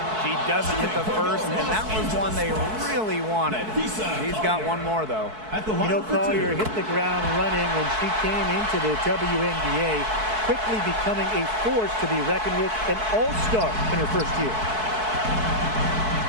She doesn't hit the first, and that was one they really wanted. She's got one more, though. You know, Collier hit the ground running when she came into the WNBA, quickly becoming a force to be reckoned with, an all-star in her first year.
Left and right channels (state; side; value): late; left; 4.6 ms